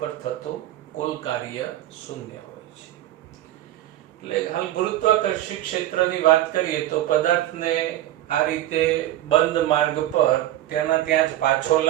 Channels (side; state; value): left; quieter; 13.8 dB